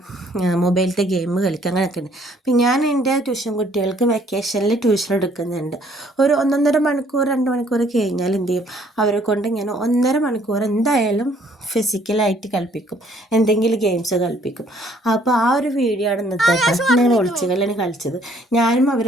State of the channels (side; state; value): both; normal; correlation 0.62